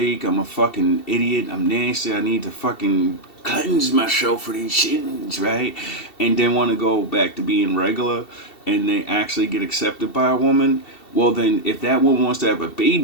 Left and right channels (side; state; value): right; late; 2.7 ms